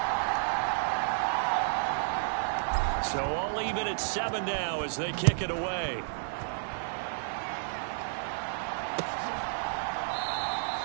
So all even at 7 now as they kick it away.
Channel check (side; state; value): left; silent; 57 dB below the other